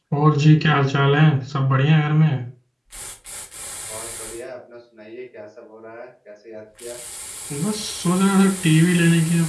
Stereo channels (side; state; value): both; identical; correlation 1.00